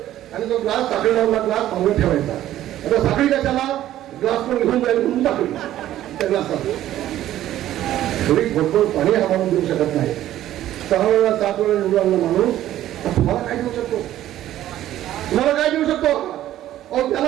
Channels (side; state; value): left; quieter; 13.1 dB